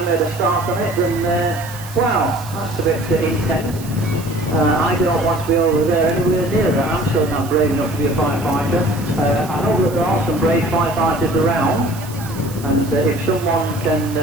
made a start on it than, wow, that's a bit intense. I don't want to be over there anywhere near that. I'm certainly not brave enough to be a firefighter. I know that there are some brave firefighters around. And if someone can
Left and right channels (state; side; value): noise; right; hiss, 17 dB below the sound